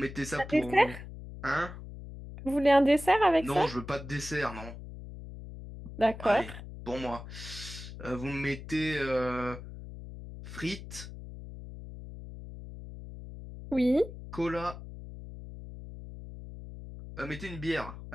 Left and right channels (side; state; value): left; noise; hum, 12 dB below the sound